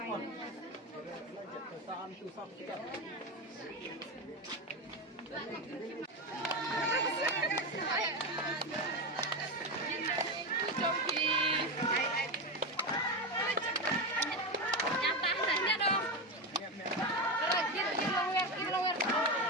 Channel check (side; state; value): both; normal; correlation 0.14